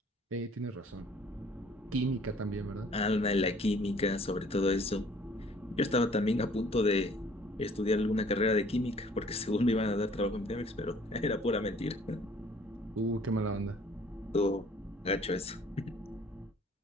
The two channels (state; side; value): normal; both; correlation 0.56